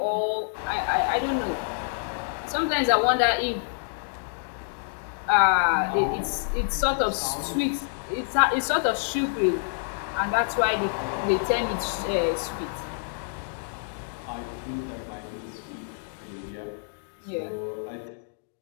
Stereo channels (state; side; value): silent; right; digital silence